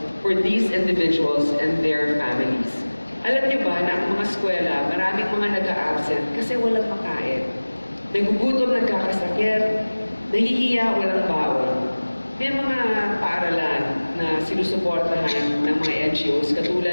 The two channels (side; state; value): both; inverted; correlation -1.00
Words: for these individuals and their families. Alam niyo ba na ang mga eskwela, maraming mga nag-a-absent kasi walang makain. Nagugutom, nagkakasakit, nahihiya, walang baon. May mga paaralan na sinusuportahan ng mga NGOs